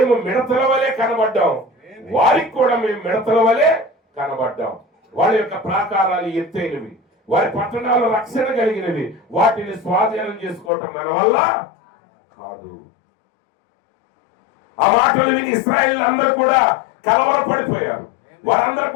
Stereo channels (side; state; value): right; drops out; at 10.7 s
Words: మిడతల వలె కనబడ్డాం, వారికి కూడా మేము మిడతల వలె కనబడ్డాం. వాళ్ళ యొక్క ప్రాకారాలు ఎత్తైనవి, వారి పట్టణాలు రక్షణ కలిగినవి. వాటిని స్వాధీనం చేసుకోవటం మన వల్ల కాదు. ఆ మాటలు విని ఇశ్రాయేలు అందరూ కూడా కలవరపడిపోయారు. వారందరూ